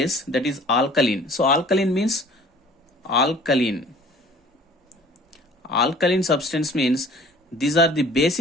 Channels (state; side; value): normal; both; correlation 0.50